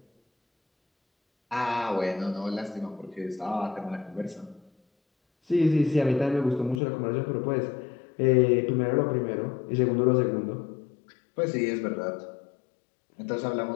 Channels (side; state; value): right; drops out; at 6.8 s